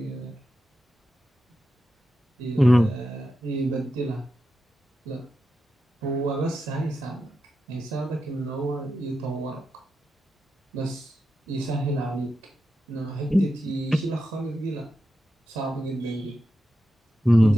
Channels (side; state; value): both; normal; correlation 0.89